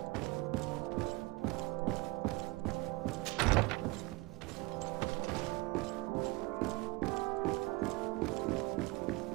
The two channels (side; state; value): left; quieter; 22.5 dB